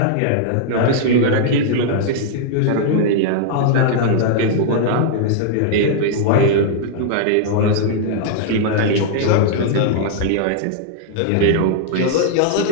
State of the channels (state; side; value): different; both; correlation -0.01